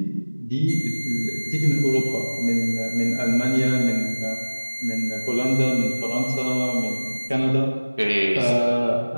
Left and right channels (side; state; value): both; inverted; correlation -1.00